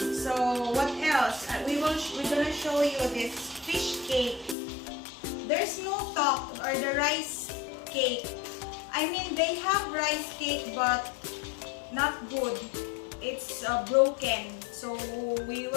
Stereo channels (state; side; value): drops out; right; at 4.5 s